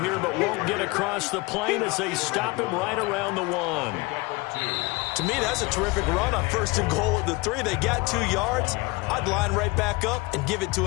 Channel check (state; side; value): quieter; right; 24.2 dB